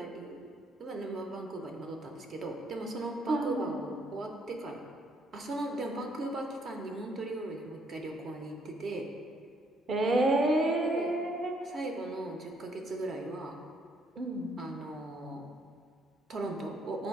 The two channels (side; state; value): both; normal; correlation 0.69